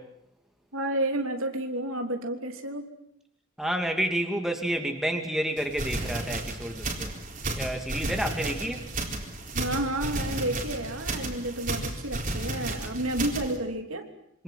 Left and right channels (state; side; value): normal; both; correlation 0.40